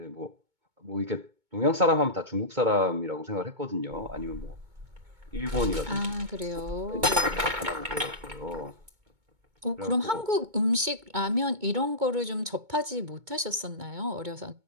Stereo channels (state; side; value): late; left; 2.2 ms